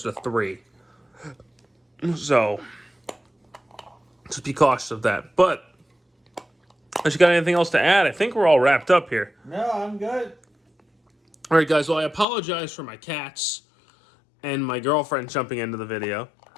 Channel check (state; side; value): drops out; right; at 12.2 s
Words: to $3. So just be cautious of that. But unless you got anything else to add, I think we're all wrapped up here. No, I'm good. All right, guys. Well, I apologize for my cats and my girlfriend jumping into the video.